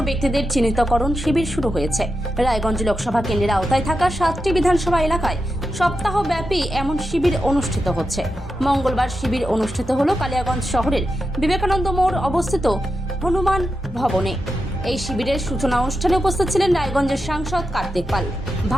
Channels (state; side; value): normal; both; correlation 0.88